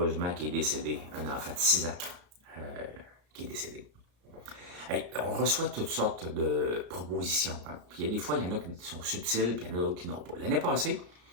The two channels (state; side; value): late; left; 34 ms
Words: qui est décédé. Un enfant de 6 ans qui est décédé. Hey, on reçoit toutes sortes de propositions. Hein. Puis il y a des fois, il y en a qui sont subtiles, puis il y en a d'autres qui n'ont pas. L'année passée,